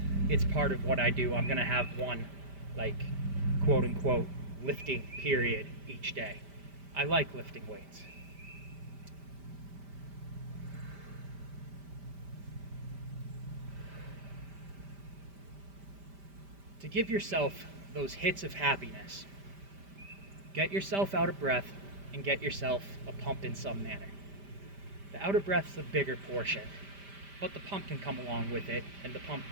it's part of what I do. I'm gonna have one, like, quote unquote, lifting period each day. I like lifting weights. To give yourself those hits of happiness, get yourself out of breath and get yourself a pump in some manner. The out of breath's the bigger portion, but the pump can come along with it, and the pump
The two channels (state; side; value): late; left; 5.1 ms